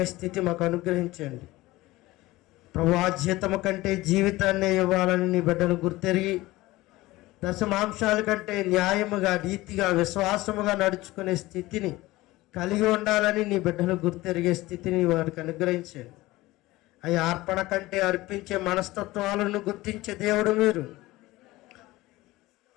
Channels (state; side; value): quieter; right; 18.9 dB